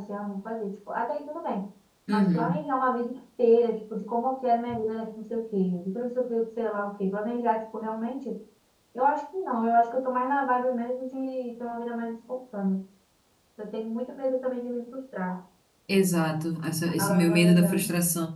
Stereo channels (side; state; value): both; identical; correlation 1.00